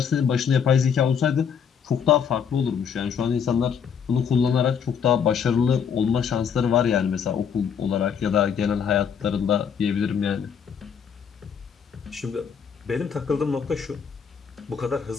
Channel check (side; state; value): right; quieter; 7.2 dB